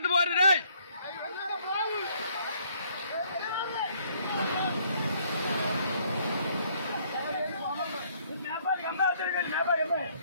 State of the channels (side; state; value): both; inverted; correlation -0.65